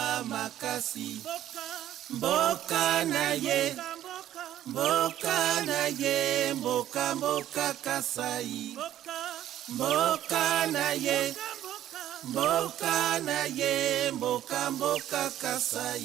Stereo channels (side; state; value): left; quieter; 12.2 dB